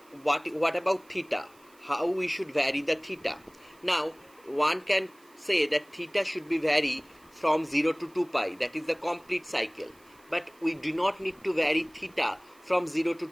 what about theta? How we should vary the theta? Now one can say that theta should be vary from 0 to 2 pi, that is the complete cycle. But we do not need to vary theta from 0 to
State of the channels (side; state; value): right; noise; hiss, 29 dB below the sound